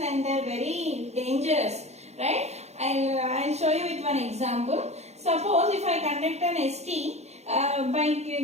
they are very dangerous, right? I'll show you with one example. Suppose if I conduct an ST by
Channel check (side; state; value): left; late; 0.32 ms